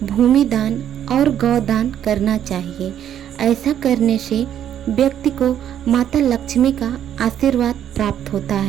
भूमिदान और गौदान करना चाहिए। ऐसा करने से व्यक्ति को माता लक्ष्मी का आशीर्वाद प्राप्त होता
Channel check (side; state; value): left; quieter; 10.2 dB